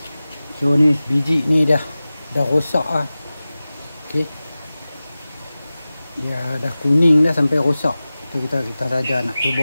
So ni biji ni dah rosak lah. Okey. Dia dah kuning dah sampai rosak. Tu kita saja nak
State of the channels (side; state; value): both; inverted; correlation -0.97